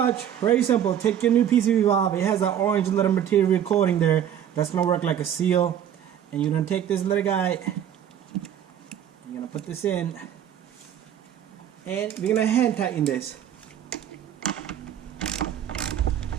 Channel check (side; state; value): left; quieter; 9.8 dB